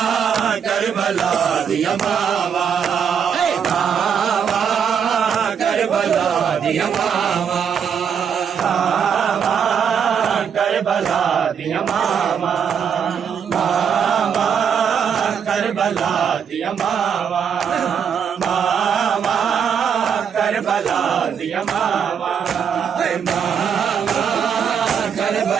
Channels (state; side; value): quieter; left; 7.4 dB